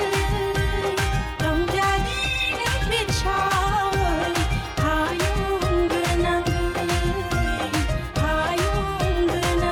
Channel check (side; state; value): both; identical; correlation 1.00